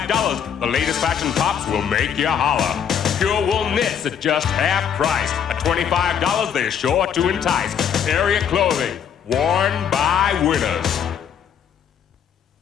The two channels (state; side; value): quieter; right; 8.1 dB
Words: The latest fashion tops will make you holler. Pure wool knits at just half price. At $25, they're sure to entice. Area clothing, worn by winners.